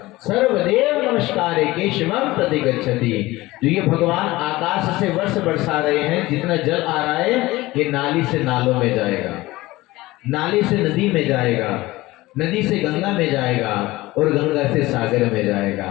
सर्वदेव नमस्कारे केशवम प्रति गच्छति। जो ये भगवान आकाश से वर्ष बरसा रहे हैं, जितना जल आ रहा है ये नाली से नालों में जाएगा, नाली से नदी में जाएगा, नदी से गंगा में जाएगा और गंगा से सागर में जाएगा।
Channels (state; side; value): quieter; right; 19.1 dB